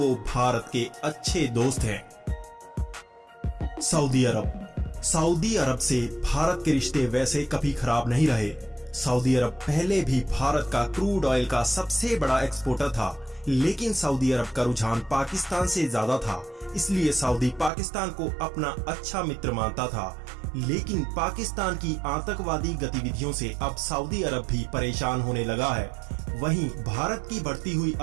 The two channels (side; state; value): left; drops out; at 17.7 s